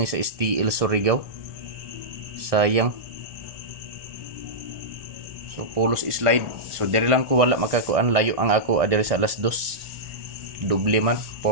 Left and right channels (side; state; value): left; late; 1.6 ms